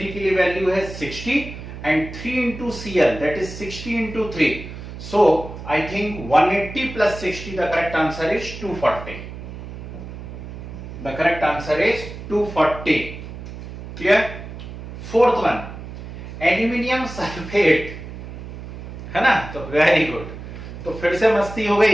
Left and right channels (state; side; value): noise; right; hum, 11 dB below the sound